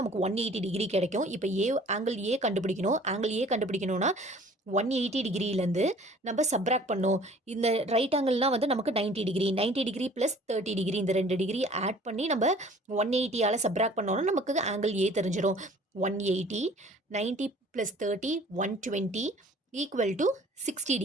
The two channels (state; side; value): normal; both; correlation 0.51